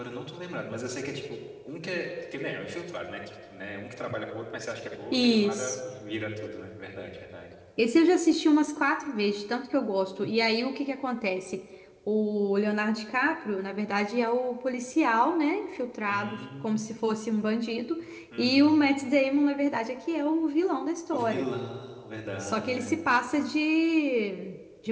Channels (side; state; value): both; identical; correlation 1.00